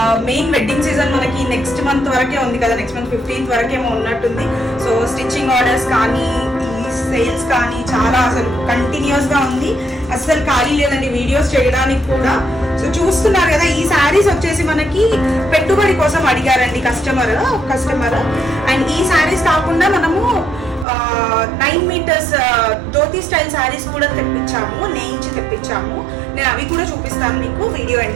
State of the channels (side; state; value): left; drops out; at 20.9 s